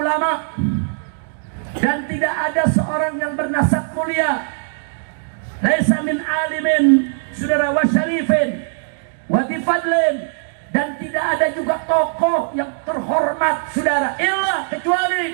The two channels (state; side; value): silent; left; digital silence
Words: dan tidak ada seorang yang bernasab mulia, laisa min alimin, saudara, wa syarifin wa difadlin, dan tidak ada juga tokoh yang terhormat, saudara, illa kecuali